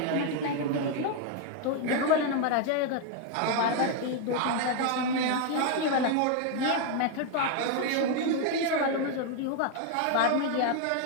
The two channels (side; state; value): both; different; correlation 0.01